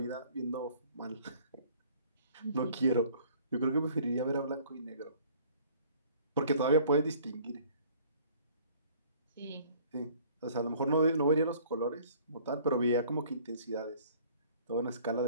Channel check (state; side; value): inverted; both; correlation -0.54